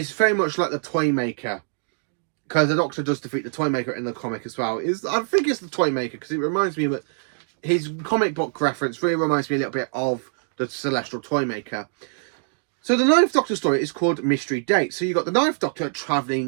very much like the Toymaker, because the Doctor does defeat the Toymaker in the comic as well. I think it's the Toymaker because it reminds me of his comic book reference. Really reminds me a little bit of the Celestial Toymaker. So the Ninth Doctor story is called Mystery Date. So you got the Ninth Doctor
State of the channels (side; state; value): left; silent; digital silence